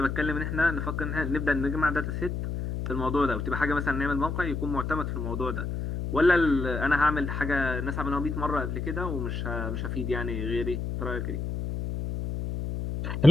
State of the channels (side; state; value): left; noise; hum, 3 dB below the sound